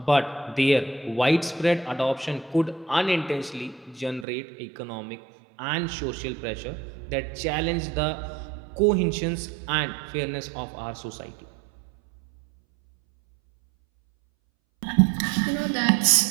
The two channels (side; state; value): left; drops out; at 4.2 s